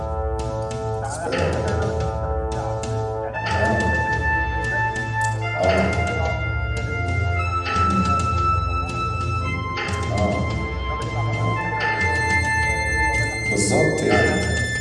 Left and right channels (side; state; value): both; identical; correlation 1.00